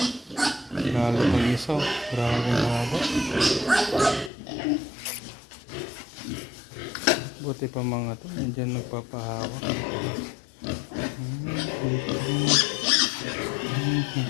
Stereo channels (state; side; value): drops out; right; at 4.3 s